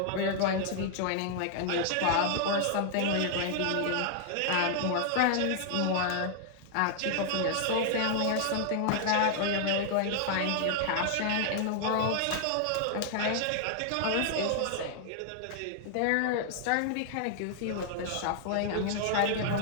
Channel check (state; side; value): different; both; correlation 0.00